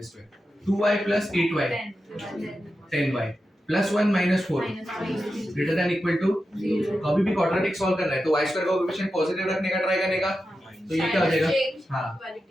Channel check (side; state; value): both; normal; correlation 0.90